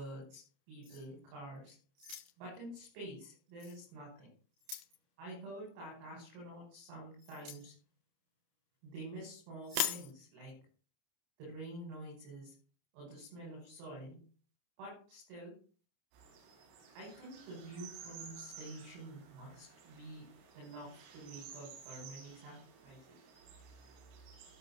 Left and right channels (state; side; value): late; left; 29 ms